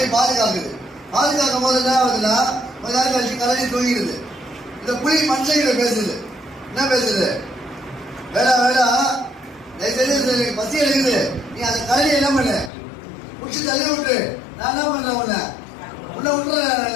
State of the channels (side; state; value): right; drops out; at 12.7 s